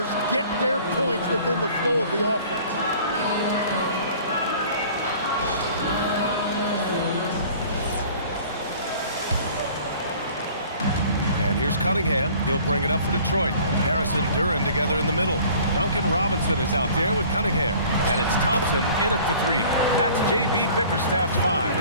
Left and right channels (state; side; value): inverted; both; correlation -0.50